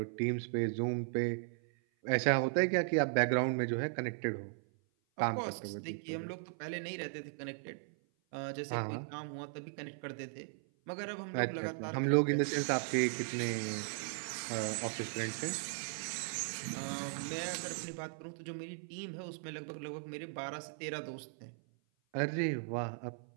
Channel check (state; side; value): silent; left; 53 dB below the other